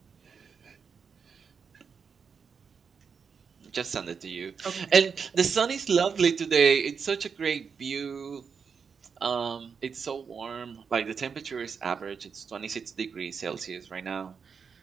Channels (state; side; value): quieter; left; 6.0 dB